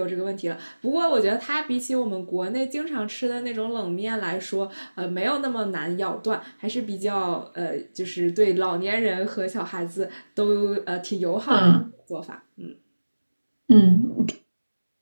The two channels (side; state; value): both; inverted; correlation -1.00